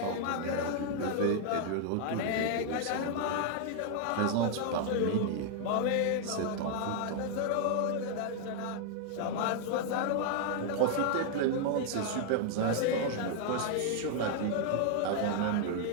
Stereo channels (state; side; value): different; both; correlation 0.00